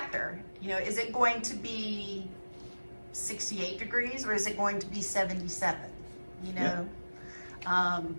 You know, is it going to be 68 degrees or is it going to be 77? You know,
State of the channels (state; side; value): inverted; both; correlation -1.00